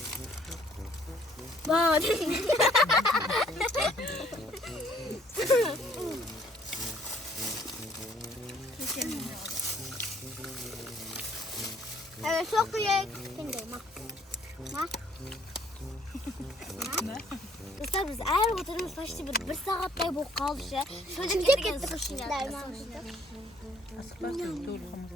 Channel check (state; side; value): normal; both; correlation 0.62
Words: Bak. Evet çok iyi. Kendi ma. Dostlar biz eğer oturmuş başta bir saatlik bu kaldı şey. Şöyle gittik suşiler. Asıklasın dolu hamur.